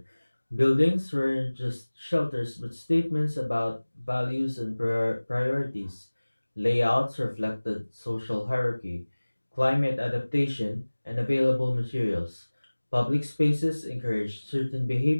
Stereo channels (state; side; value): inverted; both; correlation -1.00